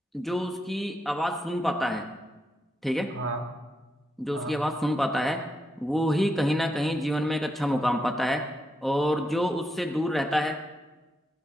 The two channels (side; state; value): both; normal; correlation 0.83